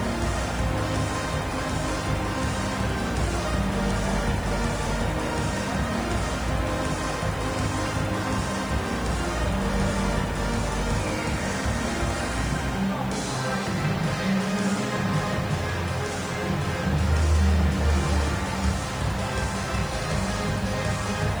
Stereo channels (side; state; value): left; noise; hiss, 23 dB below the sound